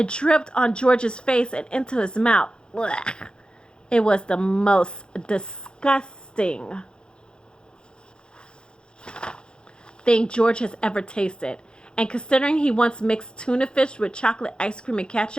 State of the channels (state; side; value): late; right; 0.050 ms